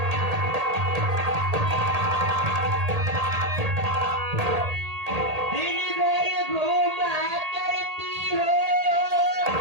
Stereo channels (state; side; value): late; left; 1.8 ms